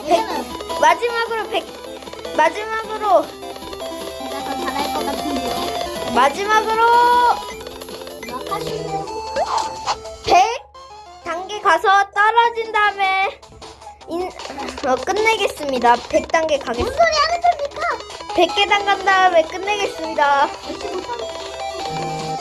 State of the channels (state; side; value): identical; both; correlation 1.00